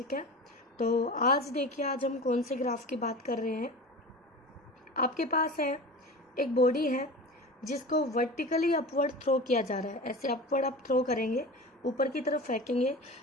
है। तो आज देखिए, आज हम कौन से ग्राफ की बात कर रहे हैं। आपके पास है एक बॉडी है जिसको वर्टिकली अपवर्ड थ्रो किया जा रहा है। ऐसे अपवर्ड आप थ्रो करेंगे, ऊपर की तरफ फेंकेंगे।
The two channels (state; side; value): normal; both; correlation 0.32